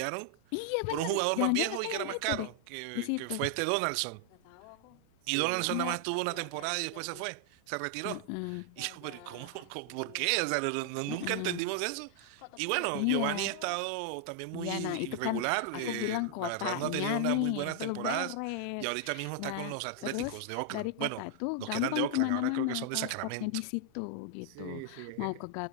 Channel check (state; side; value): different; both; correlation 0.00